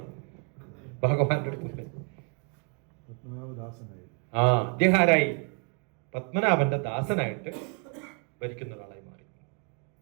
ഭഗവാന്റെ അടുത്ത്. അദ്ദേഹം ആരായി? പത്മനാഭന്റെ ദാസനായിട്ട് ഭരിക്കുന്ന ഒരാളായി മാറി.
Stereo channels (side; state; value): left; quieter; 38.2 dB